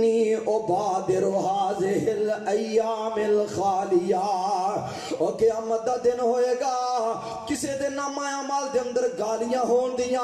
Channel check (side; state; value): both; identical; correlation 1.00